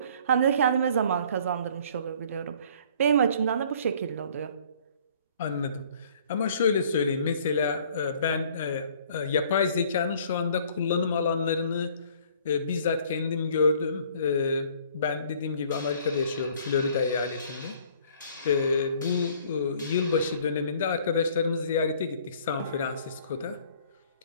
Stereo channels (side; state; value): both; inverted; correlation -0.56